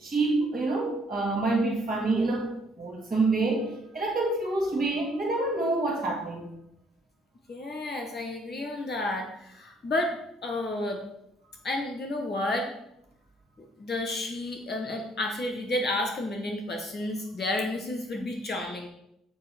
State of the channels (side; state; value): both; normal; correlation 0.65